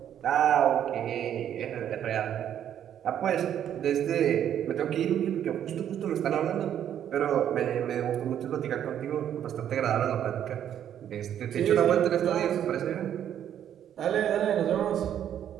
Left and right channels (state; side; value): quieter; left; 10.0 dB